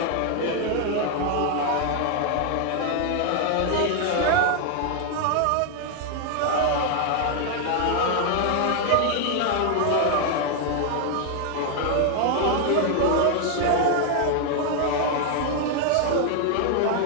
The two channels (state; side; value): different; both; correlation 0.00